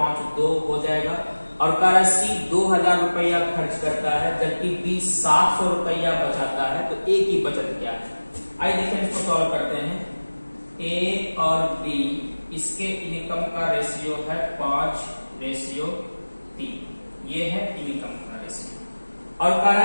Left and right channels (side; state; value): both; inverted; correlation -1.00